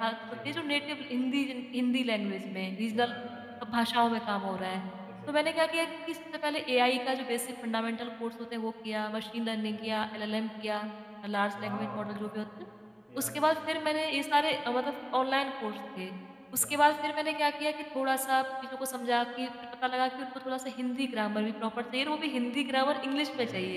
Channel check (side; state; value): both; identical; correlation 1.00